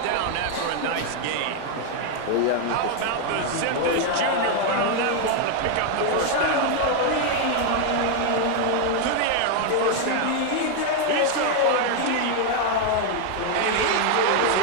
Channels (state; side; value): different; both; correlation 0.01